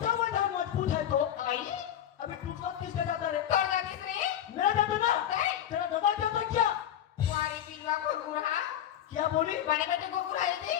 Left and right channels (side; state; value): right; quieter; 10.8 dB